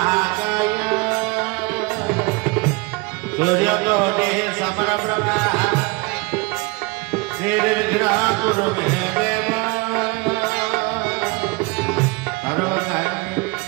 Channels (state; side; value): quieter; left; 26.3 dB